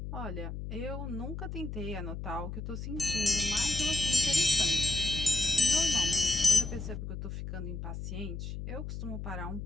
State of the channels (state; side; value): noise; left; hum, 7 dB below the sound